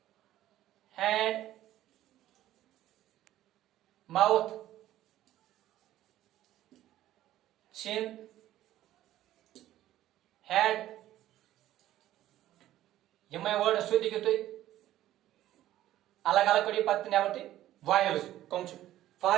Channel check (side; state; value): left; quieter; 13.7 dB